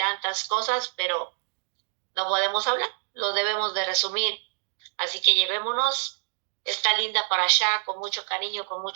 cosas, pero no podemos hablar. Lo debemos de resumir. Así que llevémonos esta linda parashá con mucho cariño, con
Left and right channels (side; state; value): left; silent; 60 dB below the other